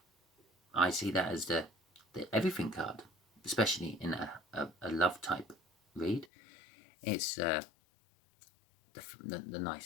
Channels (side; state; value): right; drops out; at 6.2 s